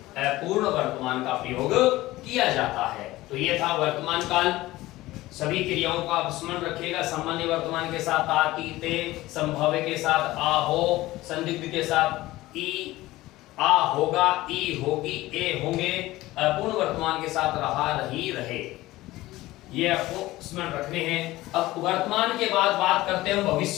अपूर्ण वर्तमान का प्रयोग किया जाता है। तो ये था वर्तमान काल। सभी क्रियाओं का आप स्मरण रखिएगा। सामान्य वर्तमान के साथ आ, ती, ते, संभाव्य के साथ आ, हो, संदिग्ध के साथ ई, आ होगा, ई होगी, ए होंगे, अपूर्ण वर्तमान के साथ रहा, रही, रहे, ये आपको स्मरण रखने हैं। अब वर्तमान के बाद बात करते हैं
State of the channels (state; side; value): quieter; right; 17.7 dB